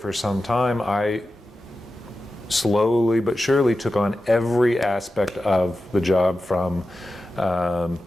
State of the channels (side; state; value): both; normal; correlation 0.93